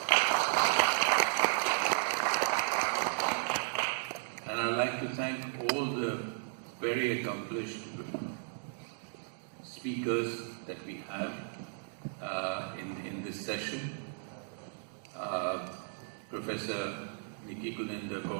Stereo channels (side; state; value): left; silent; digital silence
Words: And I'd like to thank all the very accomplished speakers that we have in this session. Professor Nikki Guninder